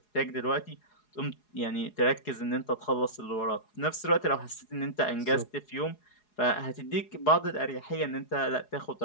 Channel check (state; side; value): late; right; 4.8 ms